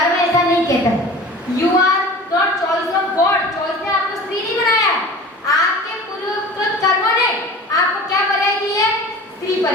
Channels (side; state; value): both; normal; correlation 0.39